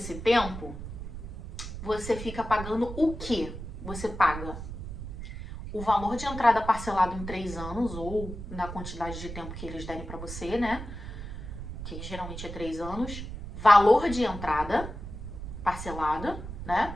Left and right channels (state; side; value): noise; right; rumble, 9 dB below the sound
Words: tempo, você fica pagando o quê? Você paga o valor de entrada parcelado em 3 anos, ou na quantidade de tempo que eles derem pra você, né? Que geralmente é 3 anos. Valor de entrada parcelada, né?